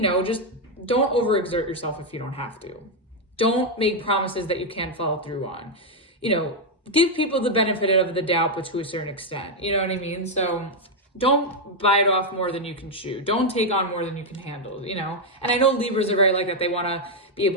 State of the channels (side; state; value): both; normal; correlation 0.01